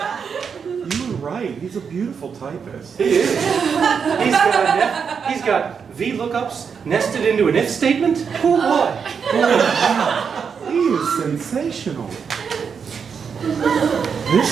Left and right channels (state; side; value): quieter; left; 6.4 dB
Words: You were right. He's a beautiful typist. He is. He's got VLOOKUPs nested into an if statement. Oh boy. He is sensational.